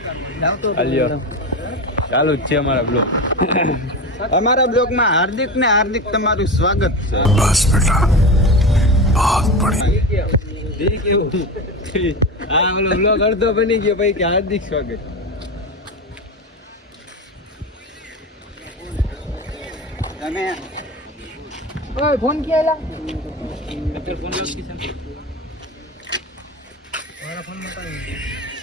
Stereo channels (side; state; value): both; normal; correlation 0.23